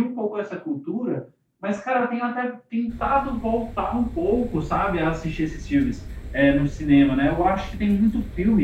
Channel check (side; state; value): both; identical; correlation 1.00